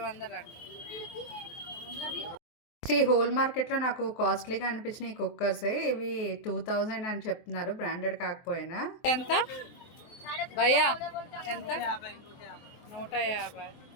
అండి. ఈ హోల్ మార్కెట్లో నాకు కాస్ట్లీగా అనిపించిన ఈ కుక్కర్సే. ఇవి 2000 అని చెప్తున్నారు, బ్రాండెడ్ కాకపోయినా. ఎంత భయ్యా? ఎంత? 150.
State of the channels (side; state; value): right; late; 23 ms